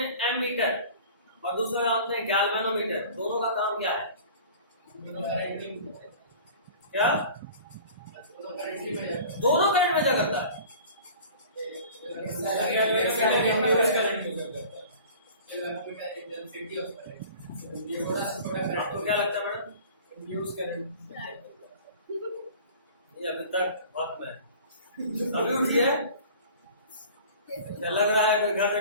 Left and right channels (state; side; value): inverted; both; correlation -0.43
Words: एमीटर और दूसरा जानते हैं गैल्वेनोमीटर। दोनों का काम क्या है? क्या? दोनों करंट मेजर करता है। आपको क्या लगता है मैडम? Induce current. ये अभी तक वक्त में अभी उठिए, लग रहा है कोई घर